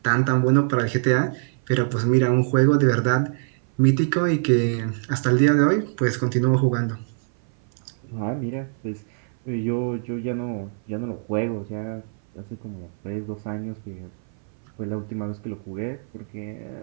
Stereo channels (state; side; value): silent; left; 58 dB below the other